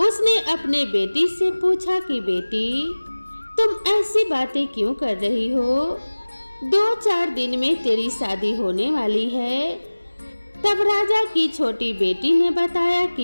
अपने बेटी से पूछा कि बेटी, तुम ऐसी बातें क्यों कर रही हो? 2-4 दिन में तेरी शादी होने वाली है। तब राजा की छोटी बेटी ने बताया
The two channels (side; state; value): both; inverted; correlation -1.00